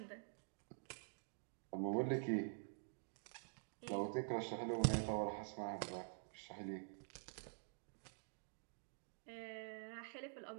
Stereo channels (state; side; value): silent; left; digital silence